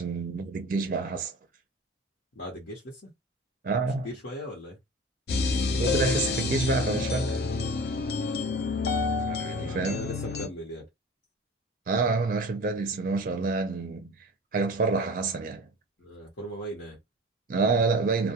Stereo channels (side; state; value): both; normal; correlation 0.37